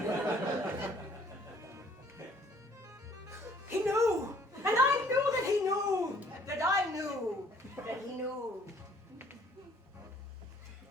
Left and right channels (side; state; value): both; normal; correlation 0.60